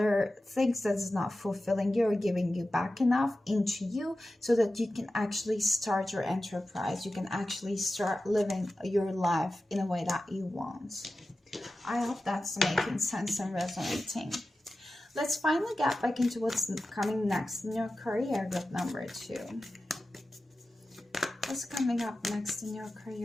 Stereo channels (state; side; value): normal; both; correlation 0.94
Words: things that is not fulfilling you or giving you back enough into you, so that you can actually start your enterprise. You can actually start living your life in a way that you want. I hope that's making sense and resonating. Let's finally get back into what's coming next in your career, group number 2. What's coming up next in your